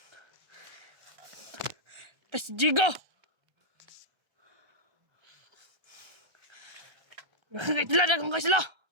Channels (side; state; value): left; late; 1.4 ms